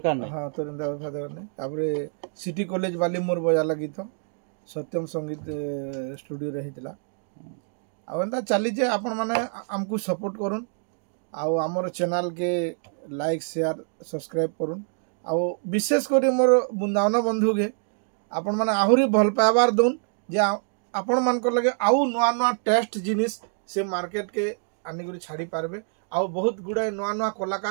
नहीं हाँ तोर एंता बेवफा दरकार नहीं तापरे सिटी कॉलेज वाली मोर बजाला गीत सत्यम संगीत स्टूडियो रे हितला आ एंता चली जे आपण माने हमकु सपोर्ट करूँ आउ आमर चैनल के लाइक शेयर सब्सक्राइब करूँ आउ विशेष कर मोर बृंदावन बंधु के आपण माने आहुरी भल पाइबार दउन जे आपण मान को लगे आउ नुआ नुआ टेस्ट जिनिस से मार्केट के आनिक छाड़ी पारबे आउ बहुत गुड़ाए नुआ नुआ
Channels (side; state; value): left; silent; 61 dB below the other